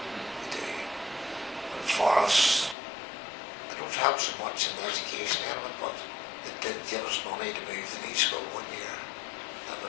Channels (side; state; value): right; drops out; at 2.8 s